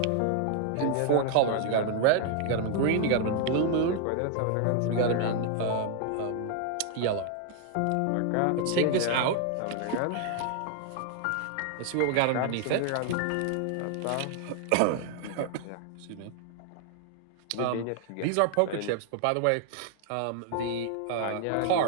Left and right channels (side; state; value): both; different; correlation 0.00